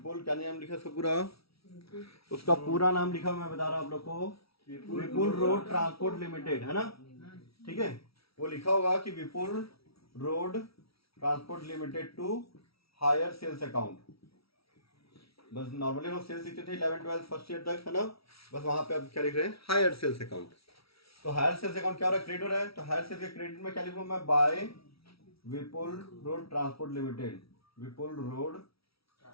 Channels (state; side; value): late; right; 0.76 ms